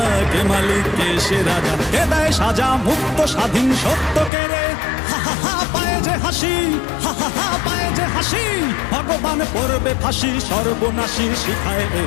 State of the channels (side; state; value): right; drops out; at 4.3 s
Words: কে মালিক কে সে রাজা। কে দেয় সাজা মুক্ত স্বাধীন সত্য কেড়ে, হা হা হা পায়ে যে হাসি, হা হা হা পায়ে যে হাসি। ভগবান পড়বে ফাঁসি, সর্বনাশী শিখায়